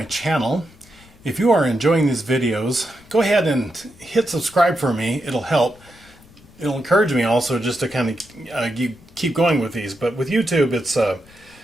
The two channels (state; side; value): noise; left; rumble, 25 dB below the sound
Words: channel. If you are enjoying these videos, go ahead and hit subscribe for me. It'll help. It'll encourage me also just to kind of keep going with these. But with YouTube,